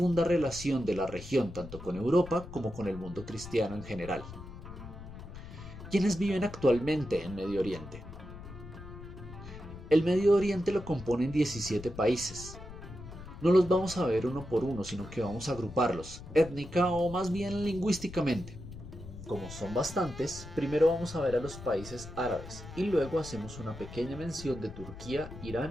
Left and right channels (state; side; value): noise; left; rumble, 13 dB below the sound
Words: relación de la región tanto con Europa como con el mundo cristiano en general. ¿Quiénes viven actualmente en Medio Oriente? El Medio Oriente lo componen 17 países. No los vamos a ver uno por uno, sino que vamos a agruparlos, étnica o más bien lingüísticamente. Como son bastantes, primero vamos a ver a los países árabes y luego hacemos una pequeña mención de Turquía,